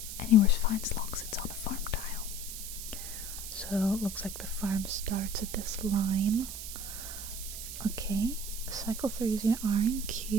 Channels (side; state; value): right; noise; hiss, 8 dB below the sound